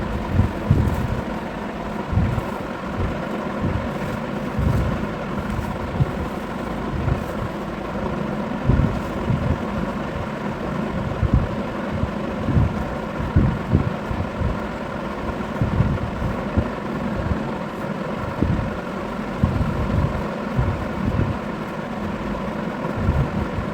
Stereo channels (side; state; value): both; identical; correlation 1.00